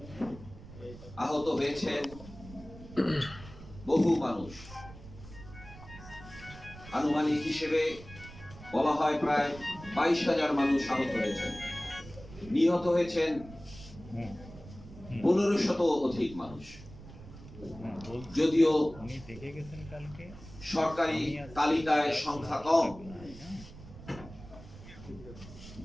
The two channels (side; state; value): right; noise; rumble, 16 dB below the sound